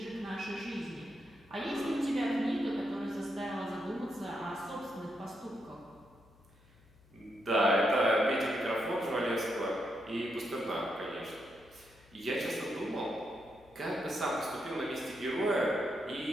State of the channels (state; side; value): noise; left; hum, 27 dB below the sound